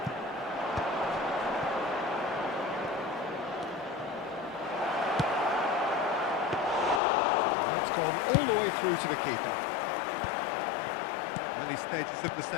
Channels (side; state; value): right; drops out; at 7.0 s